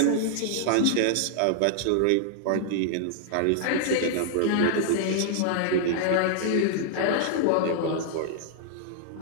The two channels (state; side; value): different; both; correlation -0.01